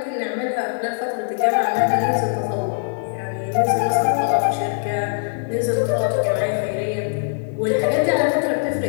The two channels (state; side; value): silent; right; digital silence